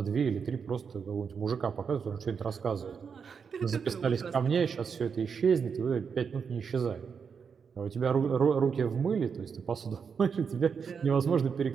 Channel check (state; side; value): quieter; left; 6.3 dB